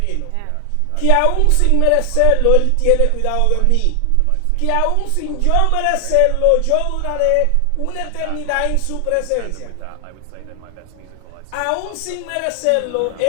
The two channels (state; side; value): different; both; correlation 0.00